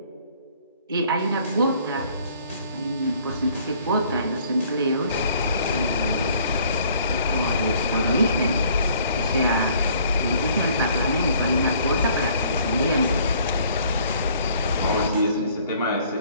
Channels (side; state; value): both; inverted; correlation -0.58